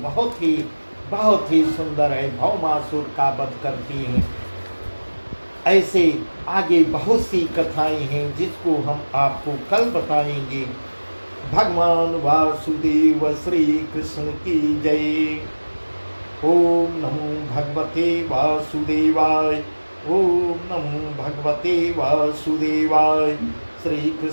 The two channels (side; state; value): both; inverted; correlation -1.00